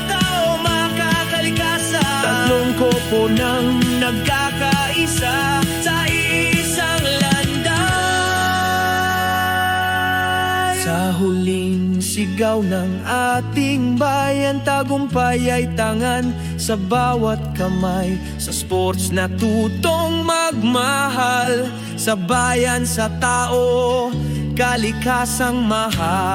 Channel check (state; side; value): identical; both; correlation 1.00